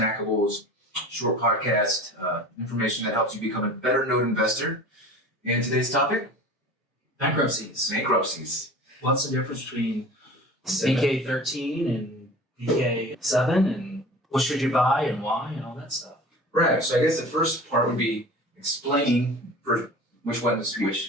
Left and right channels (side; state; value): both; normal; correlation 0.40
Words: short podcast information that helps you become a better note investor. And today's topic? Bankruptcies. Bankruptcies. What's the difference between BK 13 and BK 7, and what should you buy and why and all that stuff? Right, so I guess the first part would be explaining which one is